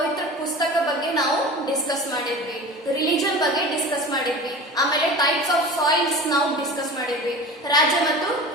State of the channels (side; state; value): both; normal; correlation 0.35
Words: ಪುಸ್ತಕ ಬಗ್ಗೆ ನಾವು ಡಿಸ್ಕಸ್ ಮಾಡಿದ್ವಿ. ರಿಲಿಜನ್ ಬಗ್ಗೆ ಡಿಸ್ಕಸ್ ಮಾಡಿದ್ವಿ. ಆಮೇಲೆ ಟೈಪ್ಸ್ ಆಫ್ ಸಾಯಿಲ್ಸ್ ನಾವು ಡಿಸ್ಕಸ್ ಮಾಡಿದ್ವಿ. ರಾಜ್ಯ ಮತ್ತು